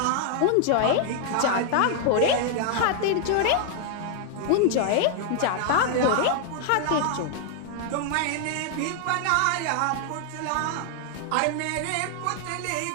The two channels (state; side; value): different; both; correlation 0.00